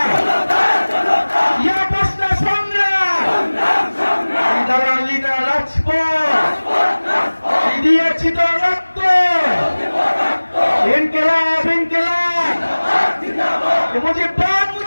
ইয়া প্রশ্ন সংগ্রাম, দালাল লিডার রাজপথ দিয়েছি তো রক্ত, ইনকিলাব ইনকিলাব মুজিববাদ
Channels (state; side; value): inverted; both; correlation -1.00